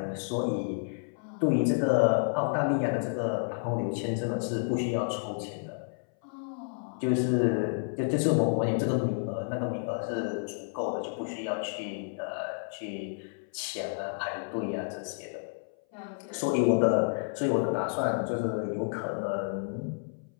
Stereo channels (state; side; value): silent; right; 58 dB below the other